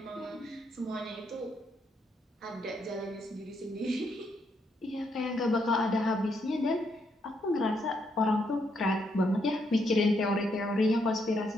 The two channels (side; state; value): both; normal; correlation 0.76